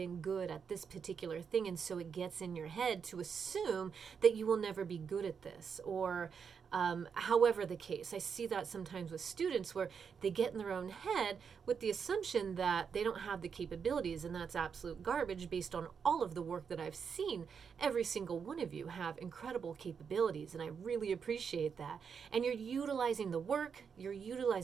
good at this particular thing. And so it gets in your head to assume that you will never be good at this or however the case. I see that sometimes with students where they get in their own head with the assumption that they don't have the capabilities, and that's absolute garbage based on all of the work that I've seen. Every single one of you have incredible capabilities, and I really appreciate that. And you're utilizing the work, you're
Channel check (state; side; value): quieter; left; 6.5 dB